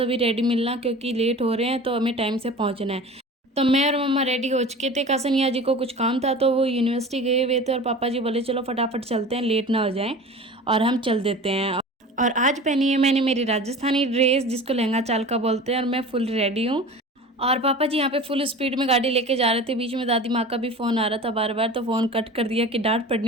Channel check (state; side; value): normal; both; correlation 0.37